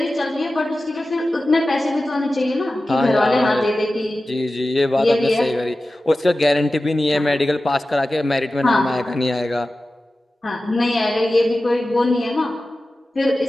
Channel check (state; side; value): normal; both; correlation 0.95